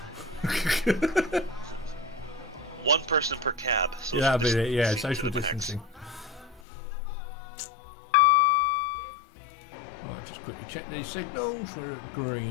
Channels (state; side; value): drops out; right; at 6.6 s